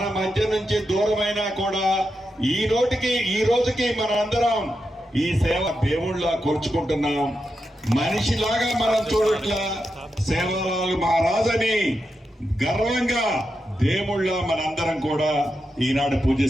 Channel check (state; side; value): normal; both; correlation 0.87